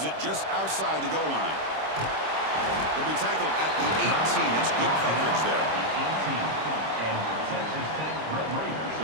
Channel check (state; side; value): late; left; 26 ms